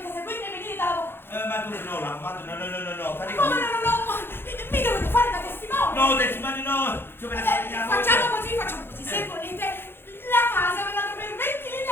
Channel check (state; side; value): late; right; 0.11 ms